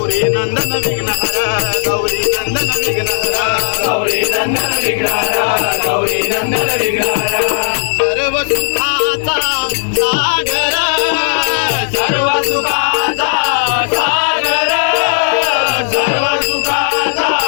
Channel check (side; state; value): right; silent; digital silence